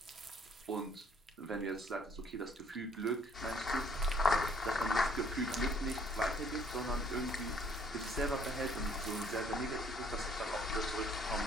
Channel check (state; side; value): normal; both; correlation 0.62